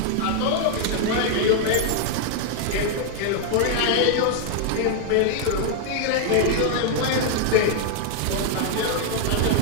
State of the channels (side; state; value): both; different; correlation 0.00